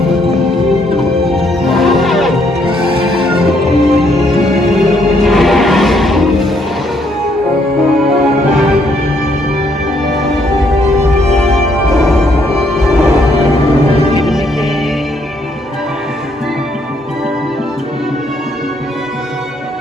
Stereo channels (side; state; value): both; normal; correlation 0.71